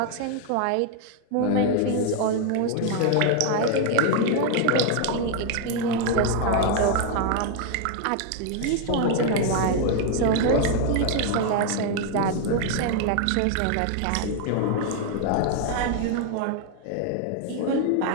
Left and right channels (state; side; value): different; both; correlation 0.01